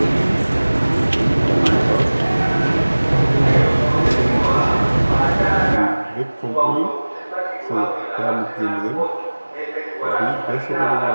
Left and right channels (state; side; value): inverted; both; correlation -1.00